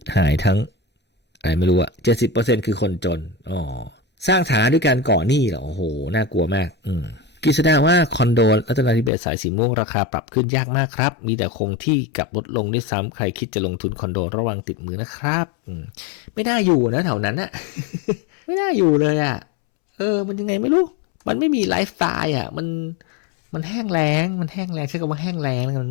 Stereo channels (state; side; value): drops out; right; at 9.1 s